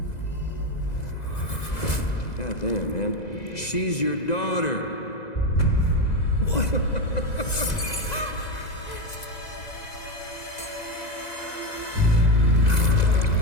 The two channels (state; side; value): late; right; 2.0 ms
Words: God damn, man. She's your daughter. What?